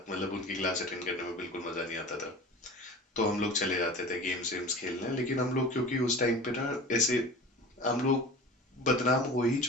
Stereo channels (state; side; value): normal; both; correlation 0.37